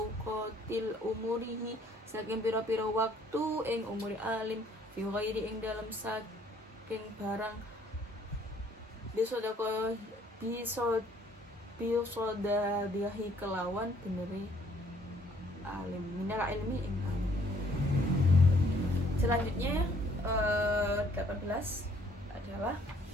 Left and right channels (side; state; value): both; normal; correlation 0.62